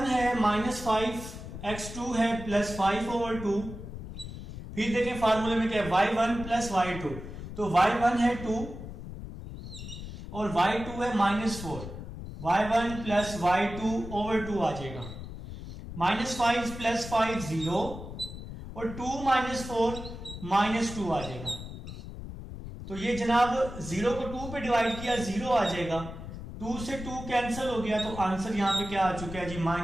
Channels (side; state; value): left; noise; rumble, 10 dB below the sound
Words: है -5, x2 है +5/2। फिर देखें फार्मूले में क्या है, y1 प्लस y2। तो y1 है 2 और y2 है -4, y1 प्लस y2/2 आ जाएगा। -5 प्लस 5 0 और 2 -4 -2 आ जाएगा। तो ये जनाब 0 को 2 पे डिवाइड किया, 0 आ जाएगा। 2 से 2 कैंसिल हो गया, तो आंसर यहाँ पे क्या आ चुका है जी,